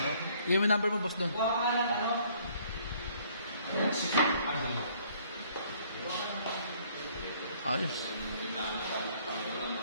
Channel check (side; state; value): both; inverted; correlation -0.61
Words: Yung number mo, boss Don. Ayos.